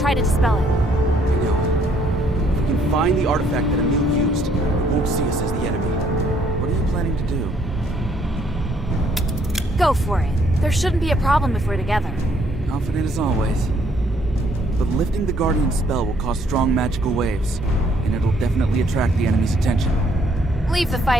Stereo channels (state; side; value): normal; both; correlation 0.66